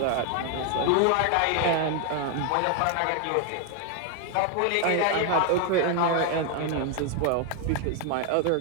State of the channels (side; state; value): both; different; correlation 0.01